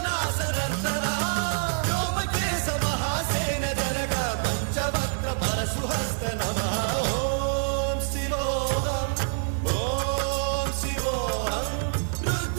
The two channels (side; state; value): left; silent; digital silence